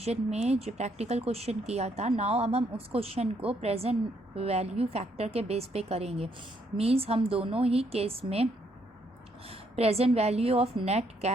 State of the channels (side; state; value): both; normal; correlation 0.72